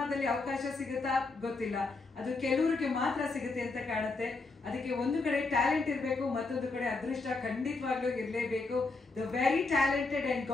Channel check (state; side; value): quieter; right; 3.7 dB